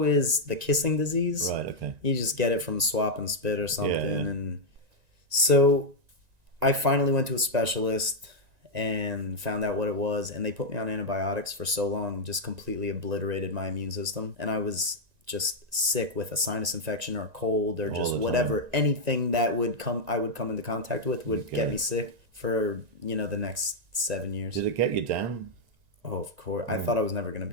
is the kissing disease. Right, okay. You just get it from swap and spit or something. Yeah. And so I finally went to a specialist and found out what it was, and they put me on antibiotics for so long, just completely obliterated my immune system. And I was just sick with a sinus infection or a cold or just whatever, anything that I would come into contact with would get me sick for, the next 7 years. Did it get you down? Oh, of course. I thought I was never going to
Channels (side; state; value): left; late; 1.9 ms